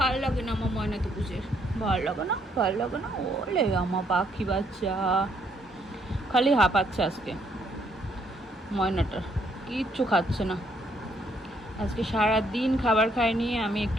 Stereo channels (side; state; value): both; normal; correlation 0.70